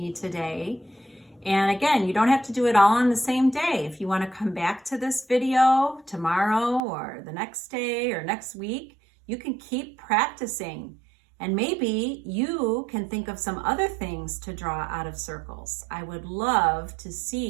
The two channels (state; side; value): drops out; left; at 6.8 s